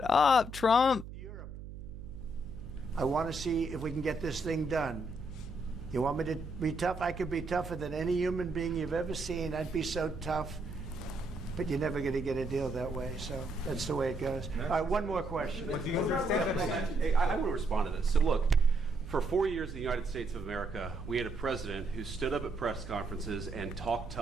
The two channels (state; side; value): noise; right; hum, 11 dB below the sound